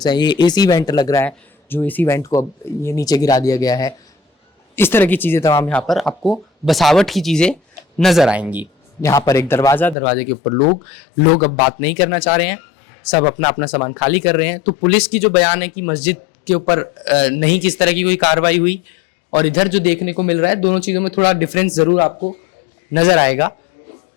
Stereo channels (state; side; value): drops out; right; at 10.0 s